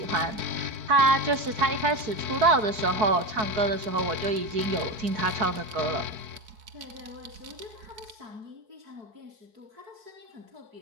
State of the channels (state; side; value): late; left; 4.7 ms